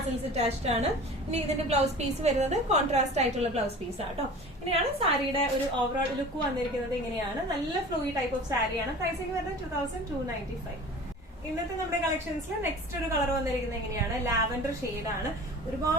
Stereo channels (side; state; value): both; normal; correlation 0.40